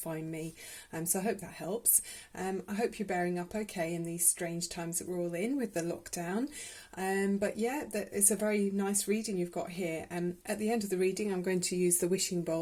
me, so I hope that helps. I hope you're bearing up okay in these strange times that we're all in with the lockdown. But yeah, it's a very nice reading you've got here. At the end of the reading, I'm going to use the wishing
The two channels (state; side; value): identical; both; correlation 1.00